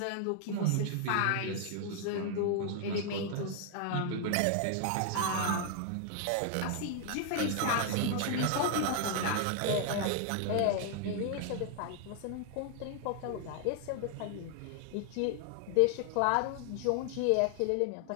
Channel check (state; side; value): different; both; correlation 0.00